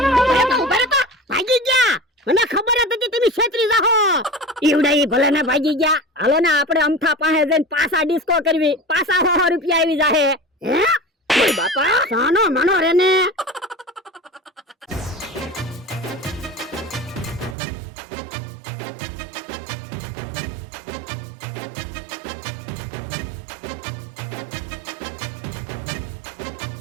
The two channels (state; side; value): drops out; left; at 17.6 s